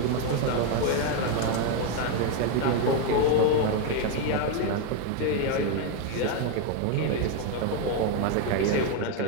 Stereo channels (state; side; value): different; both; correlation 0.01